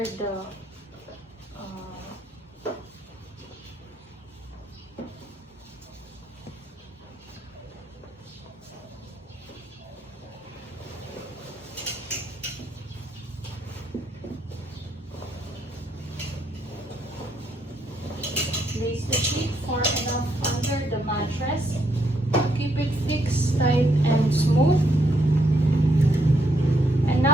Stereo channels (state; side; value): normal; both; correlation 0.74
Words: the place the sheet far enough under the mattress. Keep it fixed, tight, and smooth. And